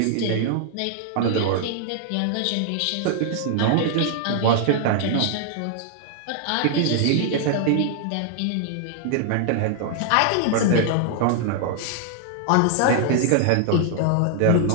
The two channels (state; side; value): different; both; correlation 0.00